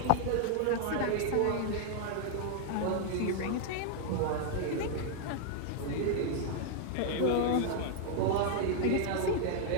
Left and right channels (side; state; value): both; different; correlation 0.00